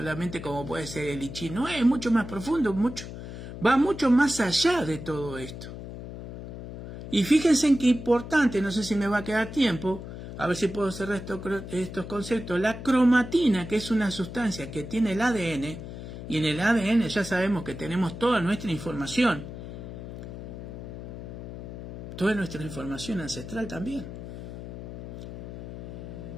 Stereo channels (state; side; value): noise; left; hum, 10 dB below the sound